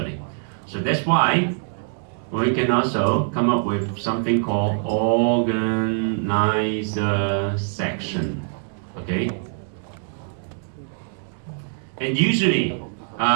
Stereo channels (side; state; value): left; silent; 63 dB below the other